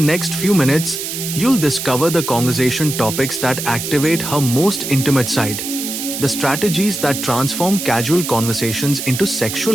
few minutes, you'll discover the conversation topics that activate her most intimate side, the strategies that transform casual conversations into sexual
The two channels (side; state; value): right; noise; hiss, 5 dB below the sound